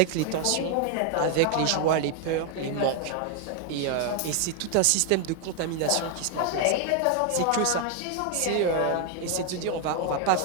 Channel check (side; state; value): both; different; correlation 0.00